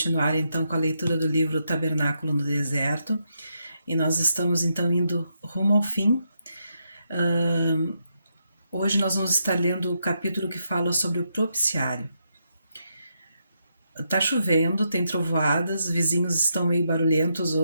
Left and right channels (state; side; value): inverted; both; correlation -0.81